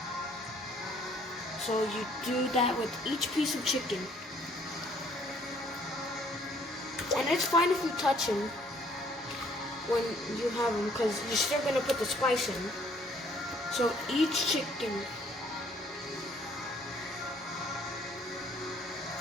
So you do that with each piece of chicken. And it's fine if you touch them when you have them, because you're still going to put the spice in. So each chicken,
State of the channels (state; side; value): normal; both; correlation 0.62